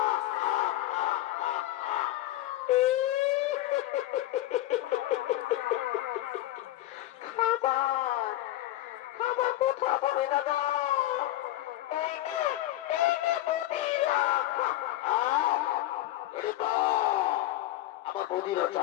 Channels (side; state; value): right; quieter; 15.2 dB